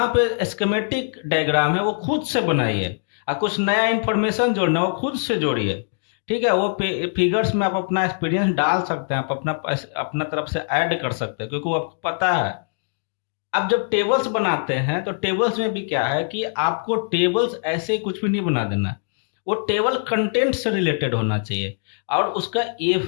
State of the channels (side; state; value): right; silent; digital silence